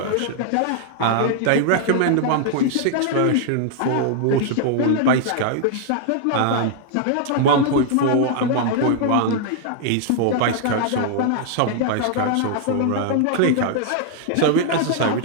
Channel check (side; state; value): both; different; correlation 0.00